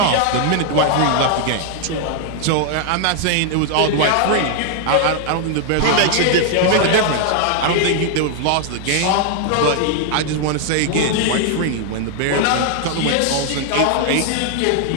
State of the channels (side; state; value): both; different; correlation 0.00